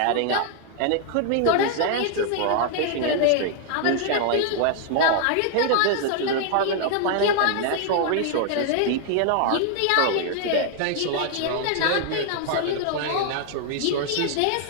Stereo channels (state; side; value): different; both; correlation 0.00